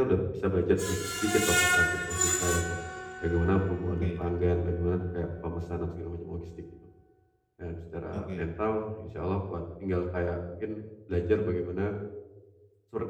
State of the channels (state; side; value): identical; both; correlation 1.00